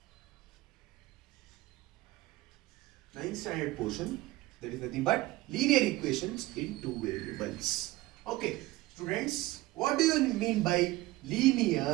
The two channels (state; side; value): quieter; left; 18.7 dB